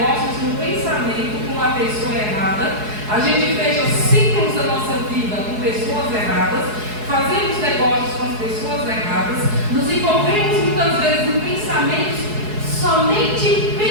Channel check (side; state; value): left; late; 4.7 ms